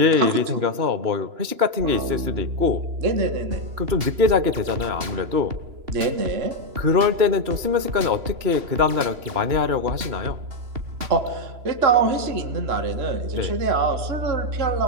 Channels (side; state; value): left; late; 3.0 ms